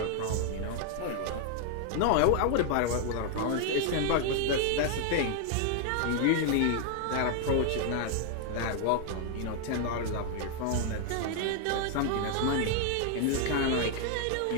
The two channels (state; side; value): different; both; correlation 0.00